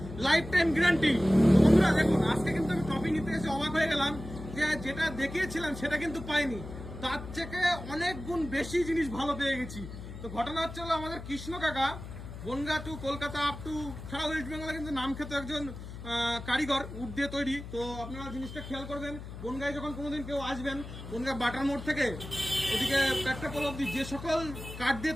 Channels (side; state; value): left; noise; hum, 11 dB below the sound